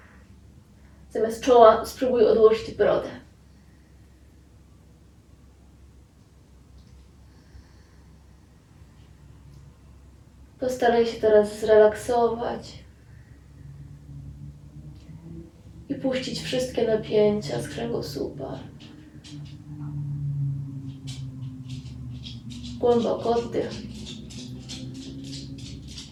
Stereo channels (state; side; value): identical; both; correlation 1.00